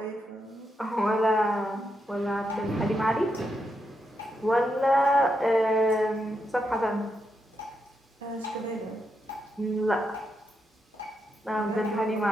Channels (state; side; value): normal; both; correlation 0.83